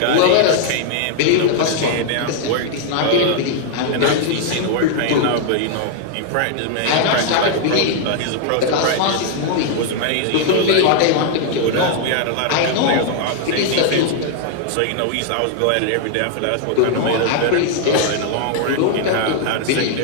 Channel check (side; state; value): both; different; correlation 0.00